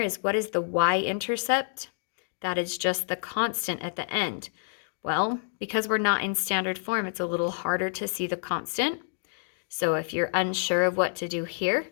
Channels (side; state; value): right; silent; digital silence